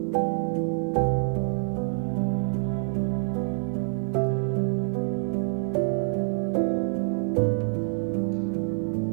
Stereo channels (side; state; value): left; silent; digital silence